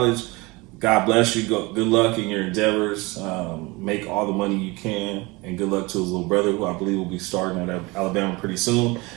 God bless you. Good luck in your endeavors. Make all the money you can, and good luck to his little brother, who I believe will be starting at Alabama pretty soon.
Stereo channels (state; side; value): quieter; left; 24.3 dB